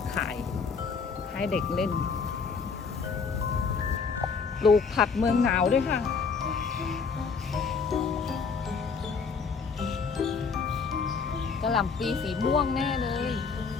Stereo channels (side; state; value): right; quieter; 5.4 dB